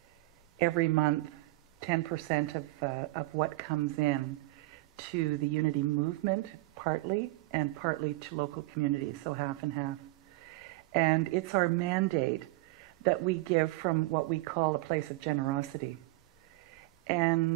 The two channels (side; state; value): left; quieter; 21.0 dB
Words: every month 10% of what comes in to the Unity movement, partly, and partly to local communities, so half and half. And it's our mandate that we give from what we call a place of generosity.